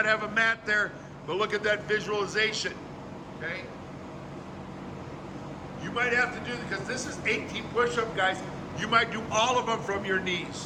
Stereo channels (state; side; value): identical; both; correlation 1.00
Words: have a mat there, but look at that visualization, okay? You might have to do, because this is 18 push-up, guys. You might do all of them from your